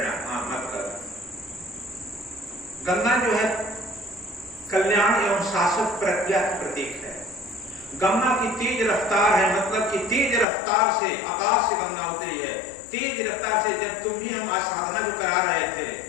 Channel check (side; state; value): right; drops out; at 10.5 s